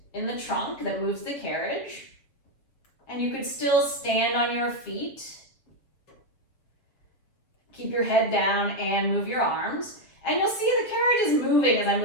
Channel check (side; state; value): right; late; 7.1 ms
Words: in the trunk that moves the carriage, and you could still stand on your feet, keep your head down, and move your arms. And you'll see the carriage is moving as I